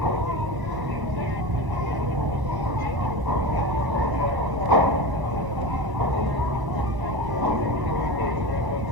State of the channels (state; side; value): late; left; 1.0 ms